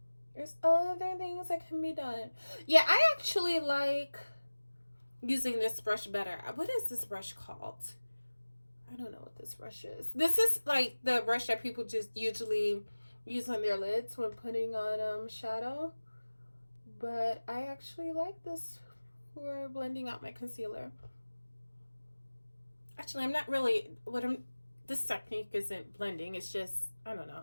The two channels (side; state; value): both; inverted; correlation -1.00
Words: There's other things that can be done. Yeah, I actually like using this brush better. What is this brush called? I don't know what this brush is. This is like the brush that people just usually use on their lids when putting on shadow. But I actually like this for blending out my concealer. Actually, I'm not really, this technique isn't blending. It's just, I don't